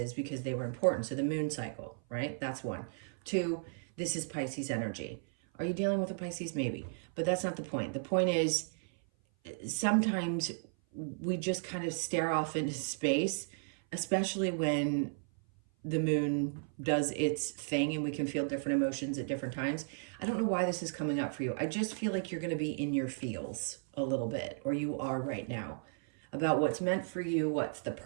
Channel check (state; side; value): silent; left; 55 dB below the other